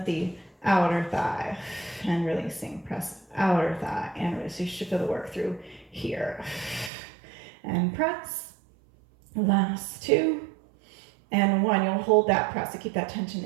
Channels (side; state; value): left; drops out; at 6.9 s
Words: the outer thigh and releasing. Press outer thigh and release. So you should feel the work through here. And press. Last 2 and 1. You'll hold that press to keep that tension